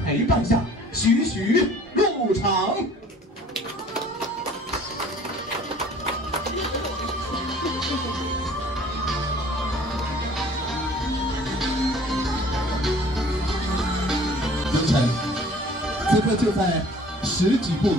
陪伴下，徐徐入场。凌晨，此刻就在10几步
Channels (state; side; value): normal; both; correlation 0.51